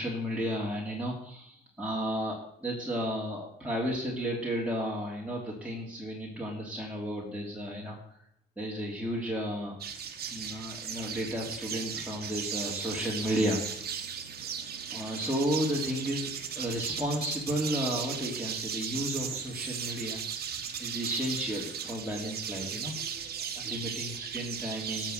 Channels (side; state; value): both; normal; correlation 0.50